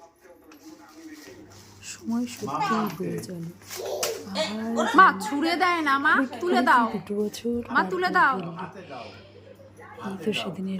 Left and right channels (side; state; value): both; identical; correlation 1.00